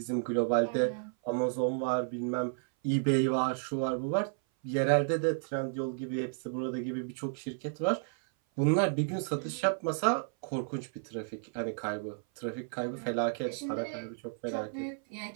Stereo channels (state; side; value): silent; left; 56 dB below the other